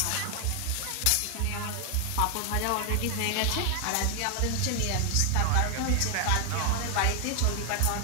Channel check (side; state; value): both; different; correlation 0.00